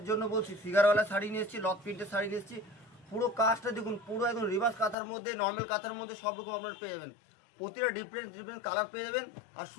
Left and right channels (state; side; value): drops out; right; at 5.0 s